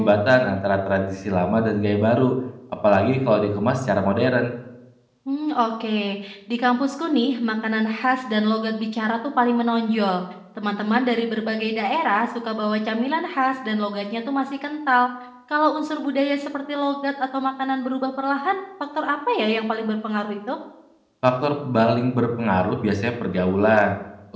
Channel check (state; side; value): identical; both; correlation 1.00